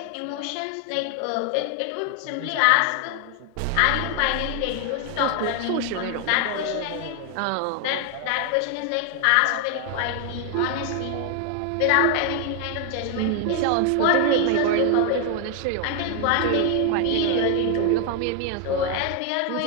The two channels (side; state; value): both; different; correlation 0.00